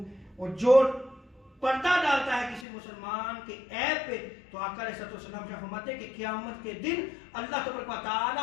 اور جو پردہ ڈالتا ہے کسی مسلمان کے عیب پہ، تو آقا علیہ السلام شاہ فرماتے ہیں کہ قیامت کے دن اللہ تبارک و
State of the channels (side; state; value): right; drops out; at 2.7 s